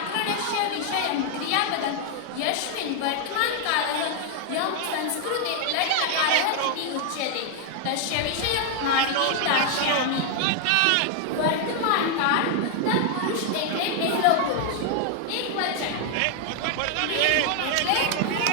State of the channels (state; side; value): different; both; correlation 0.00